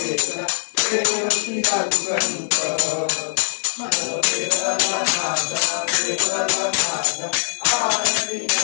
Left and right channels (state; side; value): silent; right; 61 dB below the other